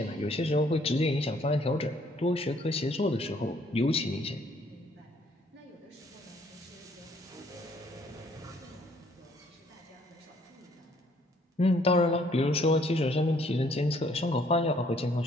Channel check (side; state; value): both; normal; correlation 0.63